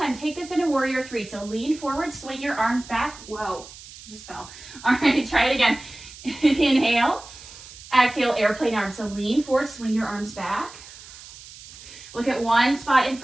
take this into Warrior 3. So lean forward, swing your arms back. Whoa, just fell. All right, try it again. Inhale. Exhale, airplane arms. So lean forward, swing your arms back. Look at one spot in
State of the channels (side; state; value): right; noise; hiss, 17 dB below the sound